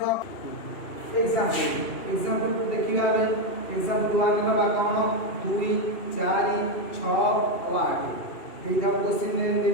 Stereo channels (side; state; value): right; late; 2.5 ms